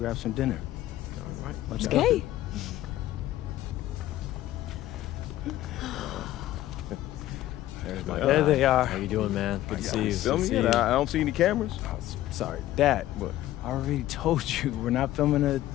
some dinner. All right. Let's go. There they are. How you doing, man? Good to see you. Filming it? I don't see any cameras. Oh, sorry. Dad, What? I already told you, we're not filming a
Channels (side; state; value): right; quieter; 14.5 dB